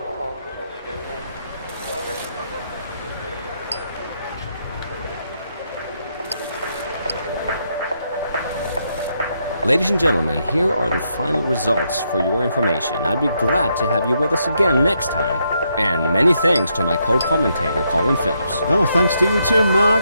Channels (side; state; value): both; inverted; correlation -0.78